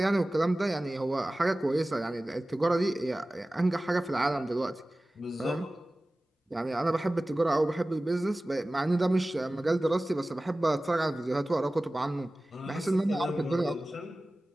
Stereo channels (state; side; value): normal; both; correlation 0.97